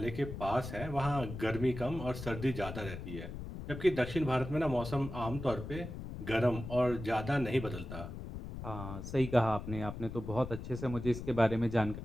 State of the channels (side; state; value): left; noise; rumble, 8 dB below the sound